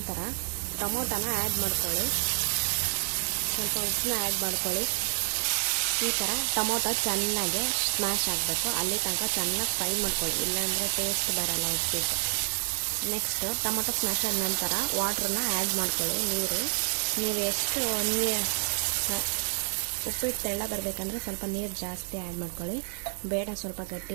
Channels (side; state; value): left; silent; digital silence